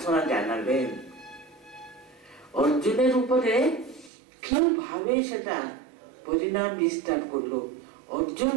জানালেন, অর্জুনের উপরে কিভাবে সেটা পরিণাম বিস্তার করলো, অর্জুন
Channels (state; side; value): drops out; left; at 4.1 s